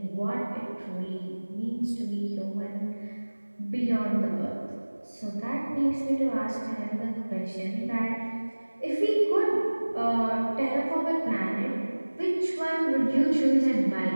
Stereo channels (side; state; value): both; inverted; correlation -1.00